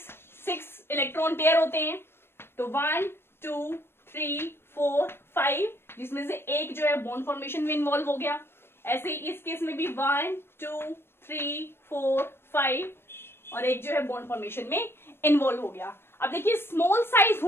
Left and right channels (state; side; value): late; right; 0.12 ms